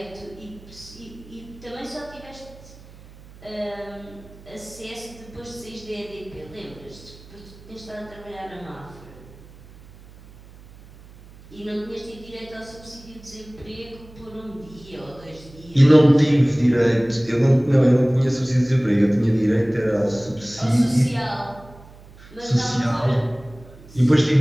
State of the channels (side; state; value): right; noise; hum, 21 dB below the sound